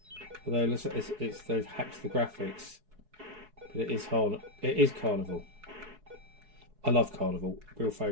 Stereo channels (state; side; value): late; left; 4.7 ms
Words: Although they've hacked the graphics, but it is Carnival. I love Carnival. Real